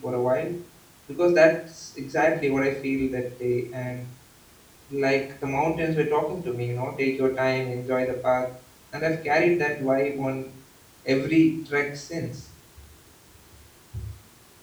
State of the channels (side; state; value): both; identical; correlation 1.00